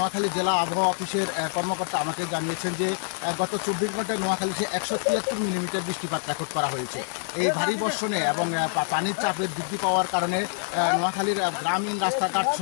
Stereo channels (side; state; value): right; silent; digital silence